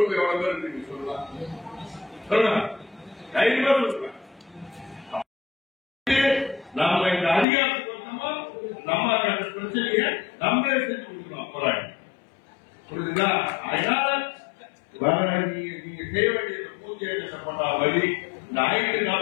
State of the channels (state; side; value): drops out; right; at 7.5 s